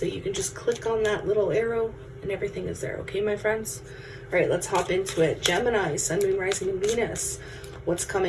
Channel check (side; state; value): both; identical; correlation 1.00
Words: you can just click on that little arrow and everything is there. Okay, my friends? All right, let's hop into it. Gemini, Sun, Moon, Rising, and Venus. What's